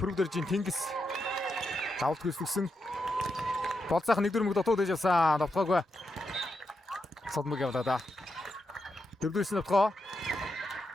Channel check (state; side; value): normal; both; correlation 0.85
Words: Тэнгис давалт гүйцэтгсэн. Болцаах нэг дөрмөг дотоод ээж авсан. Давтгаагүй. Содмог явлаа да. Дөрөвдөөс нь давтгаа.